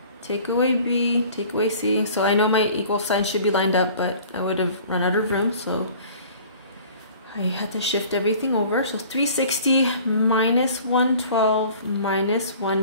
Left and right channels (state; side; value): inverted; both; correlation -0.48